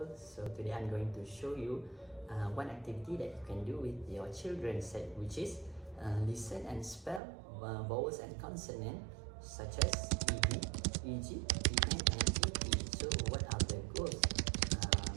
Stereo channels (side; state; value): left; drops out; at 7.2 s